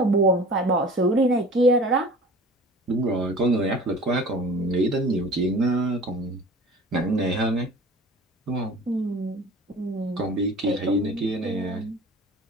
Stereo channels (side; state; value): both; normal; correlation 0.42